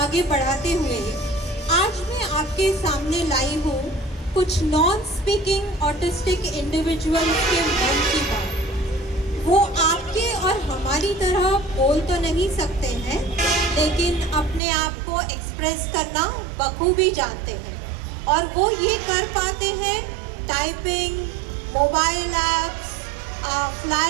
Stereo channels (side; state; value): left; drops out; at 14.6 s